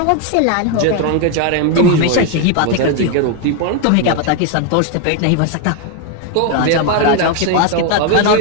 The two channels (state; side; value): different; both; correlation 0.01